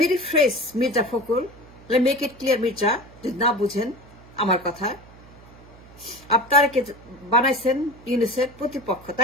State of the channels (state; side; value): noise; right; hum, 23 dB below the sound